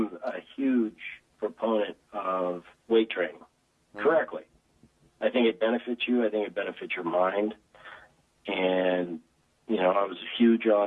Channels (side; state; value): both; identical; correlation 1.00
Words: a huge proponent of weight training, correctly. I think it benefits you. I think it benefits your mind. And I was